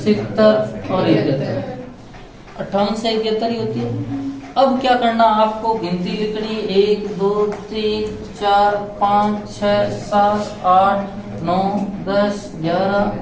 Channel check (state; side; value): identical; both; correlation 1.00